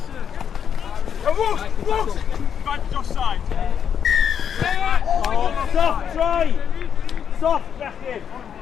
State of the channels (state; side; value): quieter; right; 8.0 dB